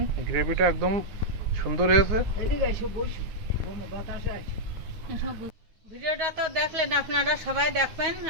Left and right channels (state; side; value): late; left; 9.5 ms